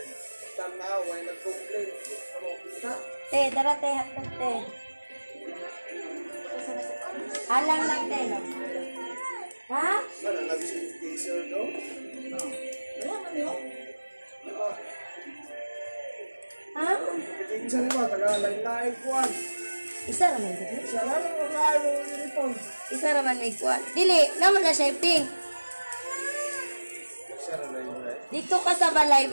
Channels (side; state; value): both; inverted; correlation -1.00